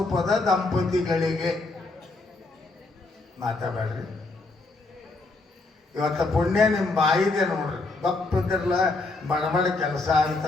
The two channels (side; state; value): right; quieter; 3.3 dB